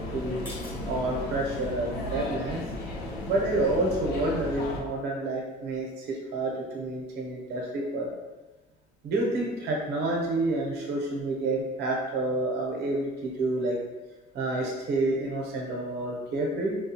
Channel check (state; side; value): normal; both; correlation 0.40